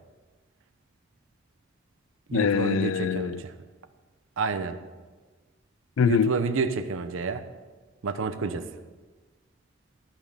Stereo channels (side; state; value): both; normal; correlation 0.14